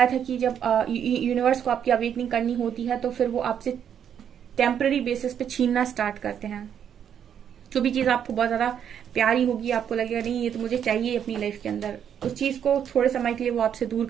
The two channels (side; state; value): left; quieter; 8.7 dB